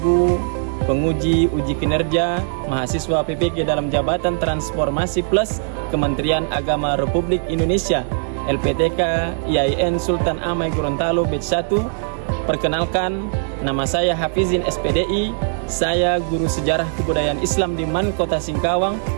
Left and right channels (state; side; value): silent; left; 66 dB below the other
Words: penguji uji kinerja mahasiswa PPG dalam Jabatan Transformasi Plus Kementerian Agama Republik Indonesia LPTK IAIN Sultan Amai Gorontalo Batch 1. Perkenalkan, nama saya Hafizin SPDI. Saya guru sejarah kebudayaan Islam di MAN Kota Singkawang,